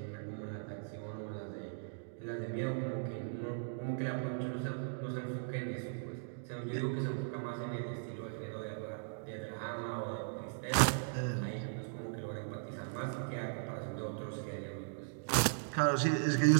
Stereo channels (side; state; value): left; silent; digital silence